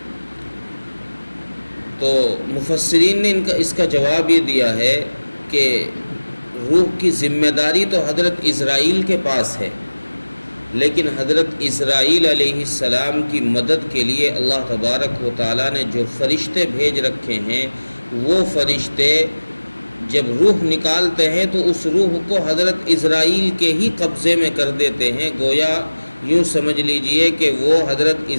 تو مفسرین نے اس کا جواب یہ دیا ہے کہ روح کی ذمہ داری تو حضرت اسرائیل کے پاس ہے، لیکن حضرت اسرائیل علیہ السلام کی مدد کے لیے اللہ تبارک و تعالیٰ نے جو فرشتے بھیج رکھے ہیں، وہ فرشتے جب روح نکالتے ہیں تو اس روح کو حضرت اسرائیل کے ہی قبضے میں کر دیتے ہیں۔ گویا یوں سمجھ لیجئے کہ وہ حضرت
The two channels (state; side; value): inverted; both; correlation -1.00